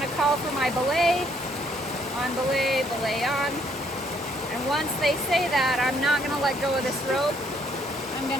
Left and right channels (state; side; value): normal; both; correlation 0.68